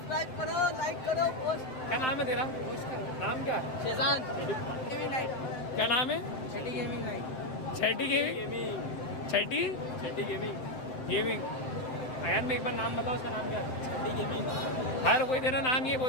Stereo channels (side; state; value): right; late; 7.8 ms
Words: करो, लाइक करो, पोस्ट। क्या नाम है तेरा? नाम क्या? Schezwan gaming night. क्या नाम है? छठी गेमिंग नाइट। छठी गेमिंग। छठी छठी गेमिंग। गेमिंग। अयान में एक बार नाम बताओ, उसका नाम क्या है? छठी गेमिंग। हर कोई तेरा नाम ये